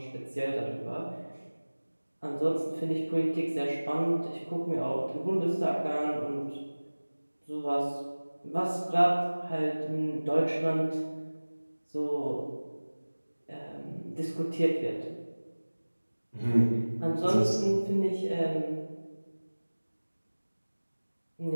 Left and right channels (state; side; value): inverted; both; correlation -1.00